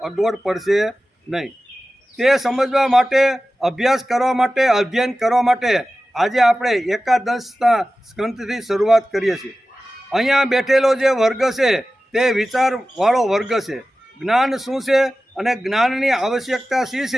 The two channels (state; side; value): normal; both; correlation 0.95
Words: અગવડ પડશે નહીં. તે સમજવા માટે, અભ્યાસ કરવા માટે, અધ્યયન કરવા માટે આજે આપણે 11 સ્કંદથી શરૂઆત કરીએ છીએ. અહીંયા બેઠેલો જે વર્ગ છે તે વિચારવાળો વર્ગ છે. જ્ઞાન શું છે અને જ્ઞાનની આવશ્યકતા શી